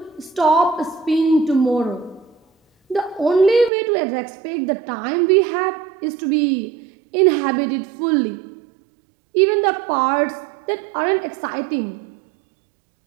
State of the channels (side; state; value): left; drops out; at 3.7 s